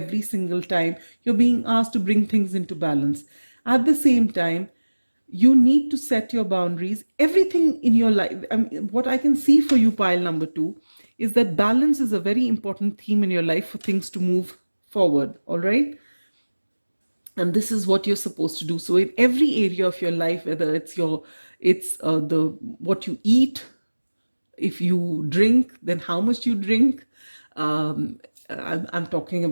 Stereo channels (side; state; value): both; inverted; correlation -1.00